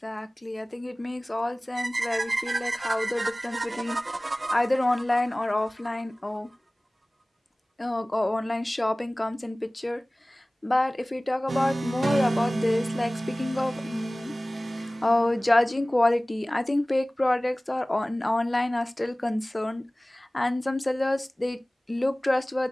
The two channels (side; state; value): both; normal; correlation 0.98